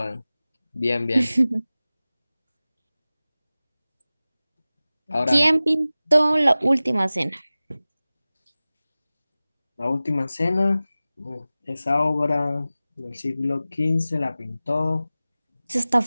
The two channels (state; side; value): inverted; both; correlation -0.97